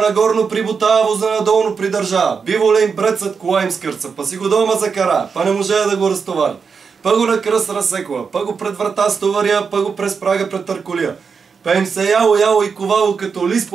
прибутава, воза надолно придържава. Биволе им прецът, кола им скърца, па си го дома закара, па не може да го разтовари. Па го на кръст разсекла, па го пред врата стовария, па го през прага пред търколия. Па им се яло и ковало като лист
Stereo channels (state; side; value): quieter; left; 5.7 dB